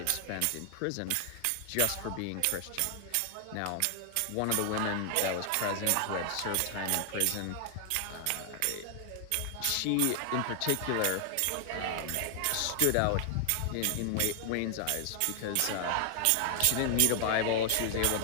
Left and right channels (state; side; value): different; both; correlation 0.00